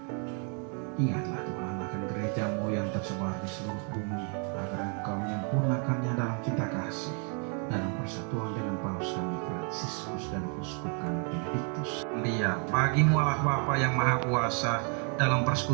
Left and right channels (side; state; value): left; quieter; 39.3 dB